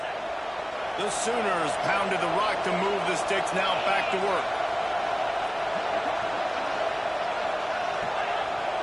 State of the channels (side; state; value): both; identical; correlation 1.00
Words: The Sooners pounded the rock to move the sticks, now back to work.